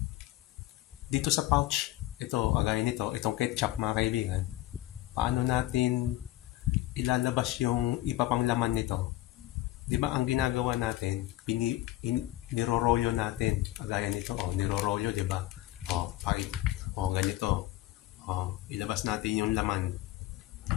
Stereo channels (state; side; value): quieter; right; 16.1 dB